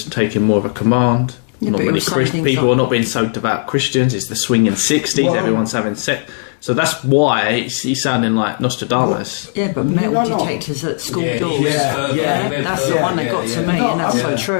taking more of a command. Yeah, not many people are not being so devout Christians. It's the swinging 60s. Well, everyone's having sex. So that's why he's sounding like Nostradamus. Yeah, but metal detectors at school doors. That's the one that got to me, and that's so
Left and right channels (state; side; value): silent; right; 69 dB below the other